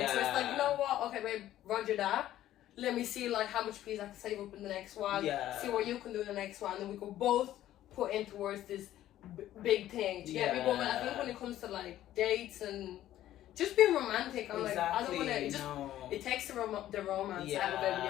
So it's like, you know what? Okay, babe, roger that. Let me see like how much please I can save up in the next one. See what you can do in the next one, and then we can both put in towards this big thing. Do you get me? But I think when it comes to like dates and just being romantic, I'm like, I don't want to. It takes the romance out of it. You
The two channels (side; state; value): right; quieter; 13.1 dB